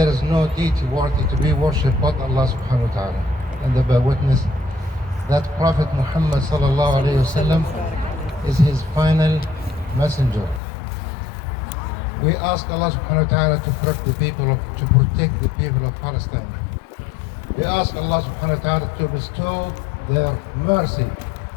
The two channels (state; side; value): drops out; right; at 10.6 s